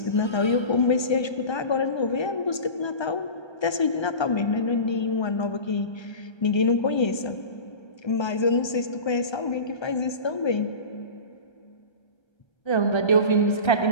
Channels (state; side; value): late; right; 1.3 ms